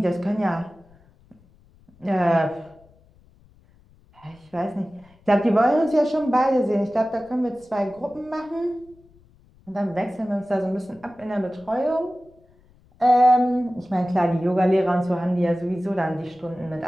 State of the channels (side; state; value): left; noise; rumble, 30 dB below the sound